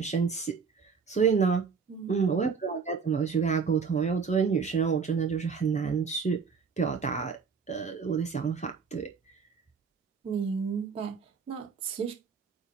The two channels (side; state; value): left; quieter; 5.7 dB